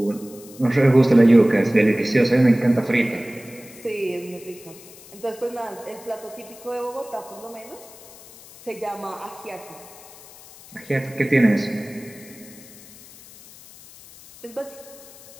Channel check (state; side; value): noise; left; hiss, 20 dB below the sound